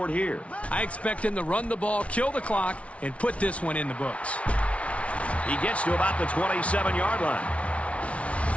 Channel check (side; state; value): right; late; 0.063 ms